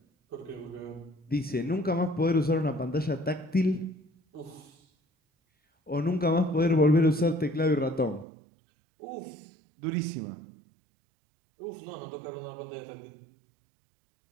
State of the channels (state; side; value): drops out; left; at 8.2 s